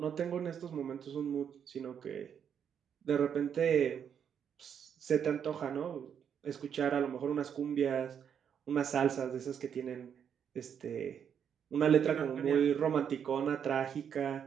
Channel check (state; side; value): quieter; left; 8.0 dB